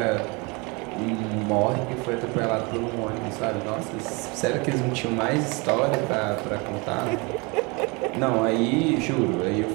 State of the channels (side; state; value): left; quieter; 28.7 dB